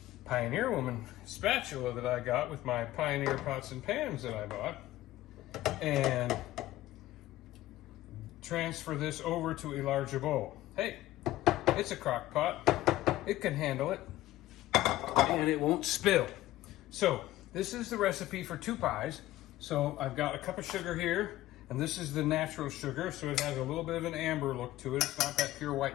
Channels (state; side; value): quieter; right; 15.6 dB